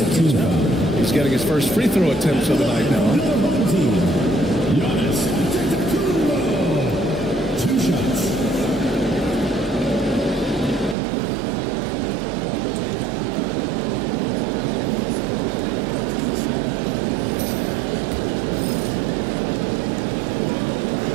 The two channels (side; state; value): left; drops out; at 11.0 s